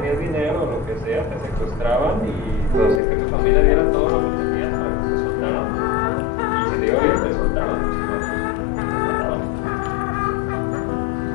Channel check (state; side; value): drops out; right; at 3.0 s